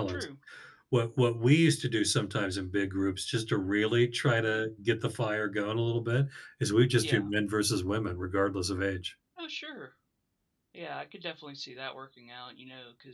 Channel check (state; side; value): identical; both; correlation 1.00